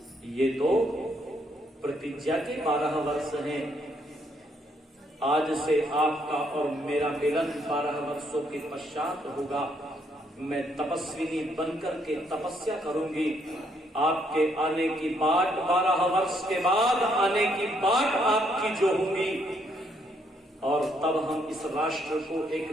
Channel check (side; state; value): both; normal; correlation 0.72